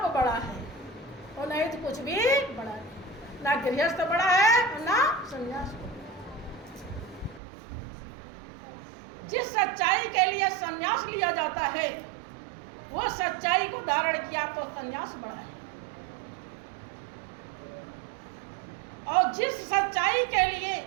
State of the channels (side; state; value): left; drops out; at 7.4 s